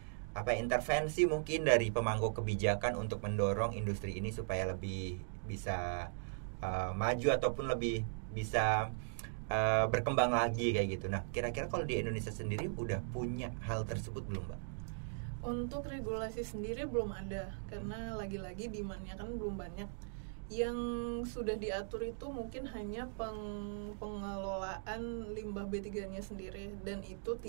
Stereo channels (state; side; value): silent; left; digital silence